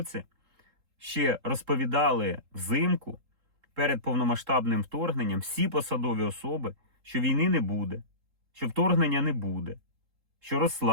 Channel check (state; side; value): late; left; 3.8 ms